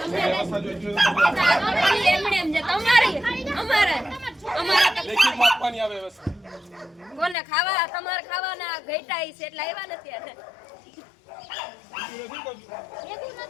એમણે એમ જે તમારી અમારે લેખિત માપવાની આવે વ્યવસ્થા કોને ખાવા તમારે ખાવાના ઘેટાઈ છે એટલે આવ્યા નથી આજે એવું ન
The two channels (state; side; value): drops out; right; at 7.4 s